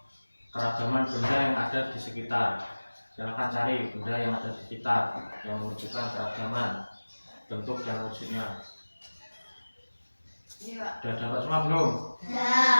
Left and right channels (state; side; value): inverted; both; correlation -1.00